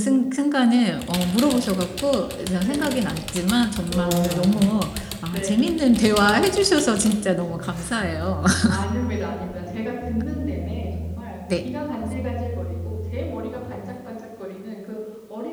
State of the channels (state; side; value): identical; both; correlation 1.00